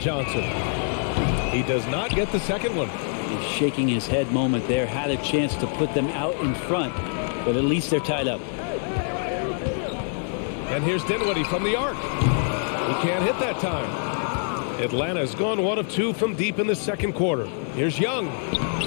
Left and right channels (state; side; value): silent; right; 62 dB below the other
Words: He does not get the second one. He's shaking his head moment there, had a chance to put them out in front, but at least they're tied up. And here's Dinwiddie from the arc. He can't hit that time. Atlanta's gone 1 of 2 from deep in the second quarter. Here's Young.